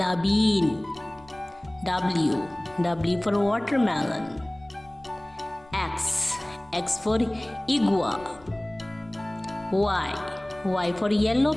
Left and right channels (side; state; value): left; noise; rumble, 26 dB below the sound